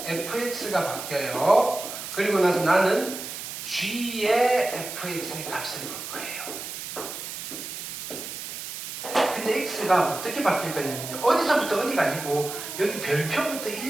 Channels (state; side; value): noise; right; hiss, 8 dB below the sound